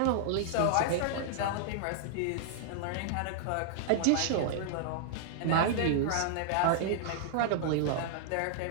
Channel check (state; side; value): different; both; correlation -0.01